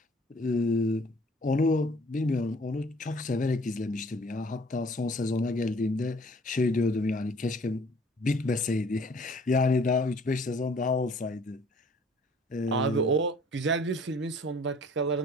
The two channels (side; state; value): both; normal; correlation 0.55